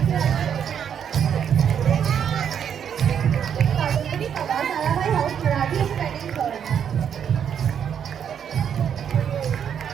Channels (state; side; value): quieter; left; 8.3 dB